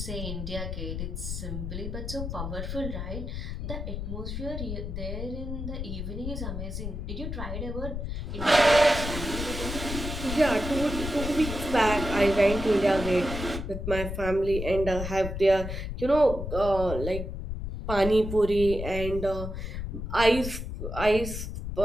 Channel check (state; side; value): noise; left; rumble, 5 dB below the sound